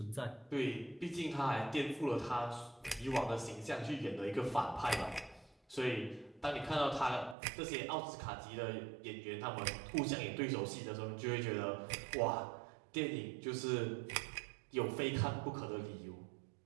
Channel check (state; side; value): drops out; left; at 7.4 s